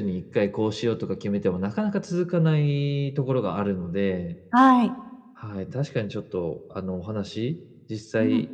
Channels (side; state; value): both; identical; correlation 1.00